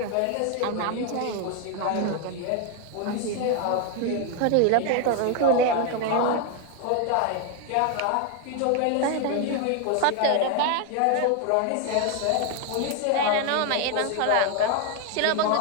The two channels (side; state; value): both; different; correlation 0.01